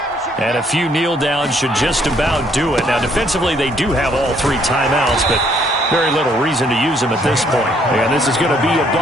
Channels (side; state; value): both; normal; correlation 0.66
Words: And a few kneel downs should just about do it. Now, defensively, they do have all 3 timeouts, but very little reason to use them at this point. And this is going to be a